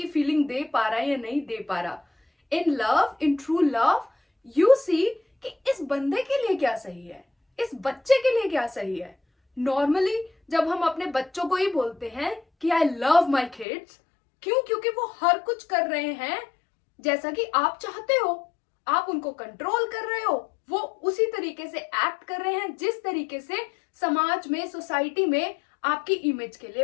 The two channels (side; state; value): right; drops out; at 13.7 s